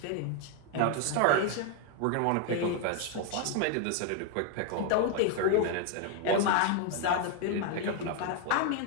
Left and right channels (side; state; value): both; different; correlation 0.00